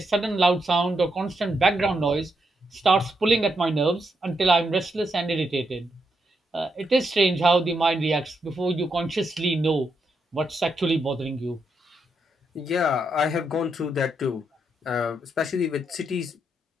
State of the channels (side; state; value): both; normal; correlation 0.80